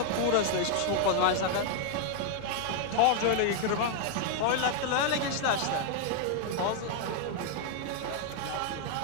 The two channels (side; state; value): both; different; correlation 0.00